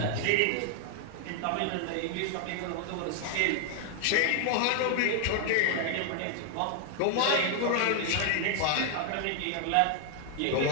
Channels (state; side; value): different; both; correlation 0.00